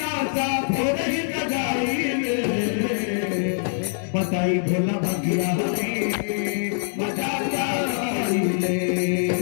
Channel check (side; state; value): right; silent; digital silence